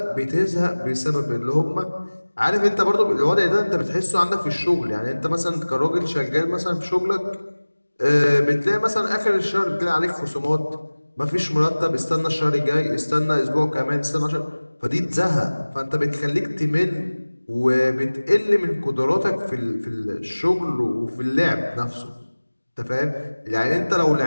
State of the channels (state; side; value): inverted; both; correlation -1.00